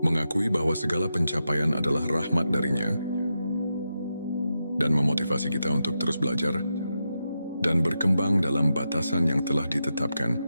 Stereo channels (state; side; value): inverted; both; correlation -0.87